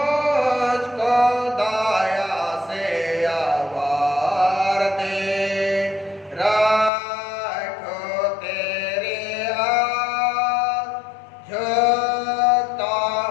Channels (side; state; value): right; drops out; at 6.9 s